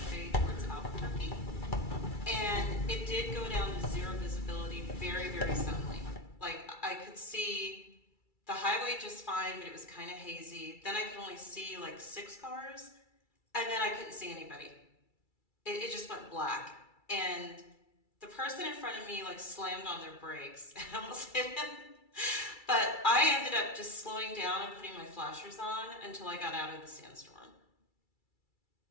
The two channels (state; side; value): late; right; 2.3 ms